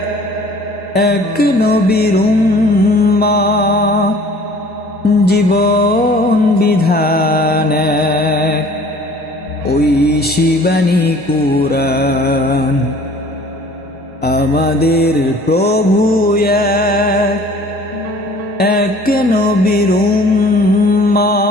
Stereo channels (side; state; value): both; normal; correlation 0.50